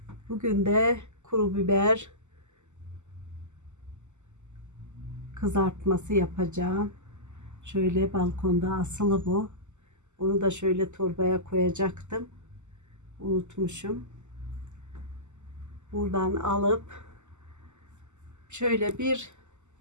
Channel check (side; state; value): left; late; 0.84 ms